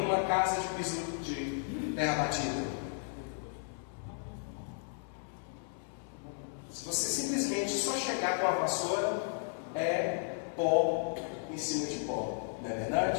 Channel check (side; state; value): right; silent; digital silence